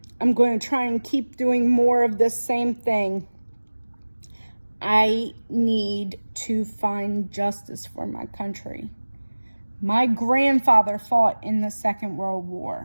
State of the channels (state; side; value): inverted; both; correlation -1.00